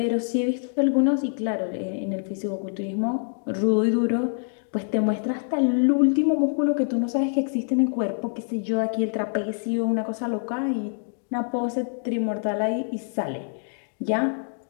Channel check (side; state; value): right; silent; digital silence